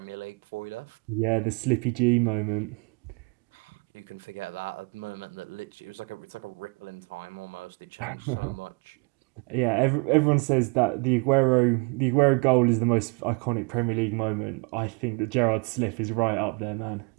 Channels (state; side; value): quieter; left; 30.9 dB